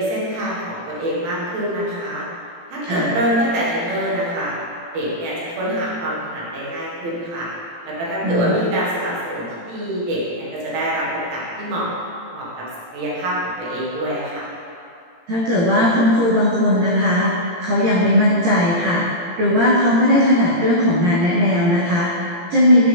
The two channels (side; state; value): left; late; 18 ms